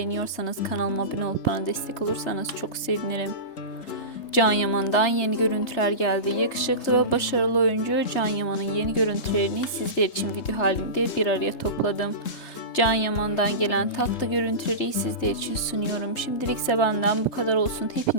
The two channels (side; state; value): right; late; 3.3 ms